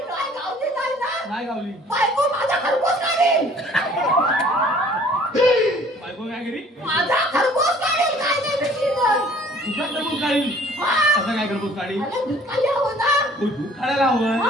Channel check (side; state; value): both; normal; correlation 0.54